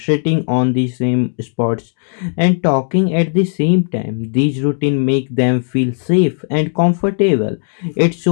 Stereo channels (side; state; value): right; silent; digital silence